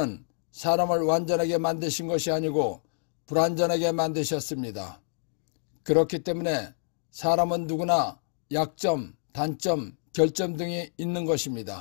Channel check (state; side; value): silent; right; digital silence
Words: 사람을 완전하게 만드신 것이 아니고 불완전하게 만드셨습니다. 그렇기 때문에 사람은 누구나 약점, 단점, 결점 등이 있는